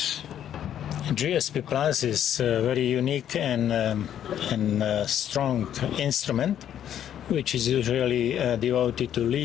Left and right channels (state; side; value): quieter; right; 10.3 dB